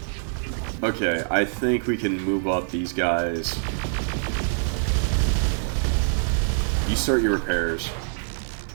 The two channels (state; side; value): silent; left; digital silence